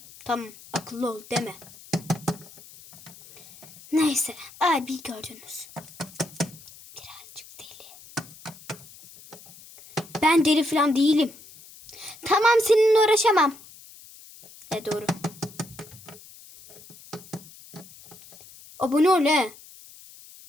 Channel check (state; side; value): noise; left; hiss, 20 dB below the sound